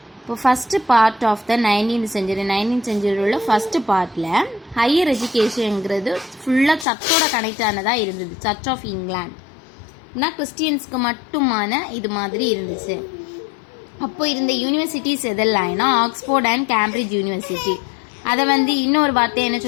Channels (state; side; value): drops out; right; at 6.9 s